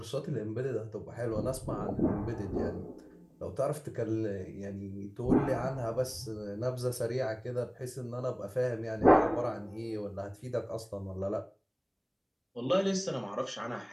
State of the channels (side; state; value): both; identical; correlation 1.00